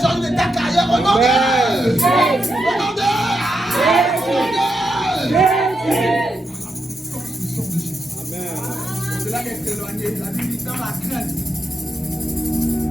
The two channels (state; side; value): normal; both; correlation 0.84